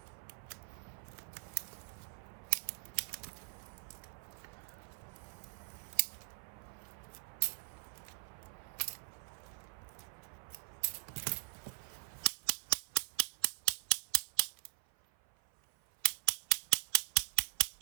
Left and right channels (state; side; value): silent; left; 50 dB below the other